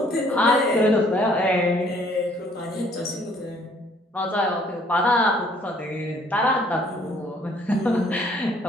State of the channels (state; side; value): normal; both; correlation 0.61